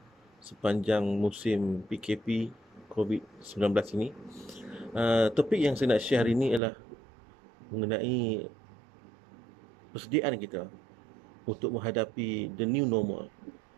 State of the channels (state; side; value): drops out; left; at 6.6 s